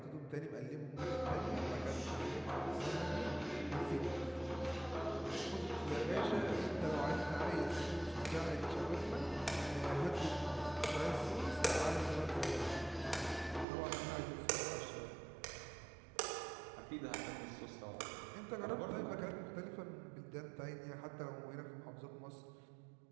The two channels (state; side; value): drops out; left; at 13.7 s